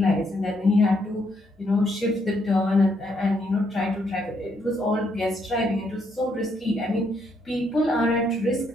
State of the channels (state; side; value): normal; both; correlation 0.74